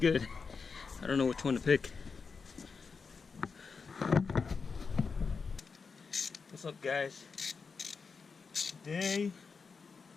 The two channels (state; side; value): quieter; right; 5.1 dB